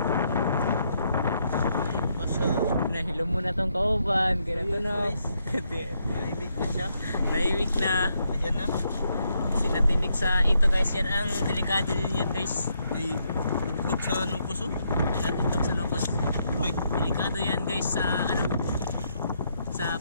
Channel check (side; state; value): both; inverted; correlation -0.76